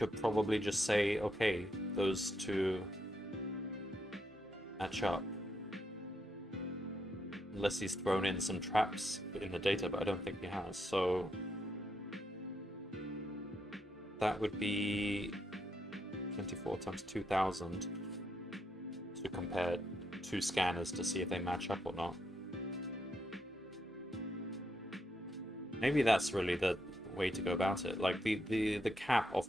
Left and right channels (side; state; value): both; normal; correlation 0.79